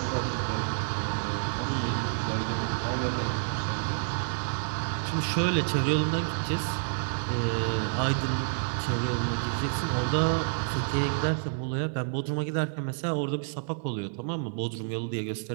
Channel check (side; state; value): left; silent; 59 dB below the other